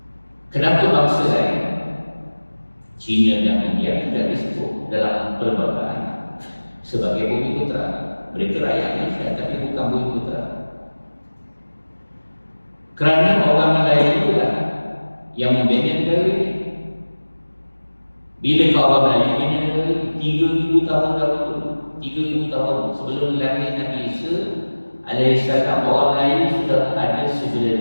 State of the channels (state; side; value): inverted; both; correlation -1.00